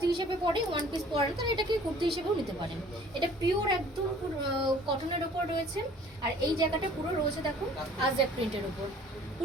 হিসেবে পরে ওয়ান পিস পরেন, তারা এটাকে কুর্তি হিসেবেও নিতে পারেন। এটা পিওর একদম কটনের ওপর রয়েছে। আর এই জায়গাটা পুরো রয়েছে দেখো আজরাক প্রিন্টের ওপর,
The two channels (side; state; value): both; normal; correlation 0.52